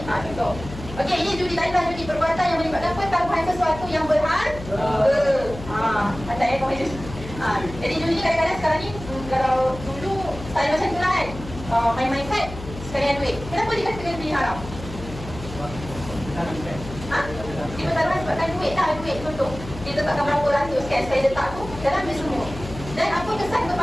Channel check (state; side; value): noise; left; hum, 12 dB below the sound